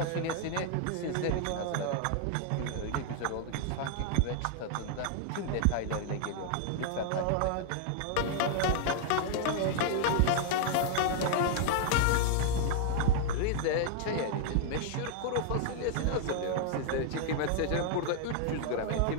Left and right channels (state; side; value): different; both; correlation 0.00